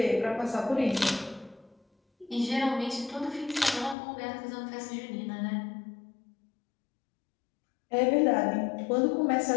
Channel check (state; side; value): drops out; right; at 4.0 s